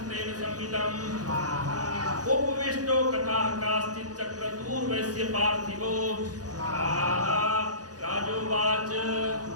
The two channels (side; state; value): left; late; 0.68 ms